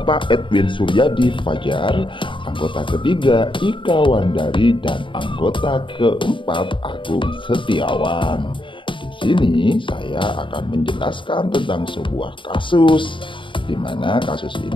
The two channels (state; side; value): late; right; 0.24 ms